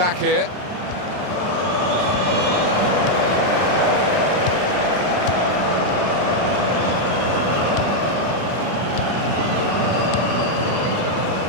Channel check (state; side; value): late; left; 33 ms